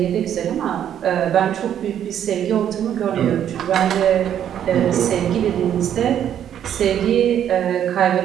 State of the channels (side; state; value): left; quieter; 9.9 dB